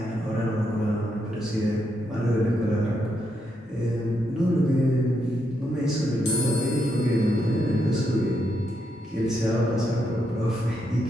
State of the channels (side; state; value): both; normal; correlation 0.80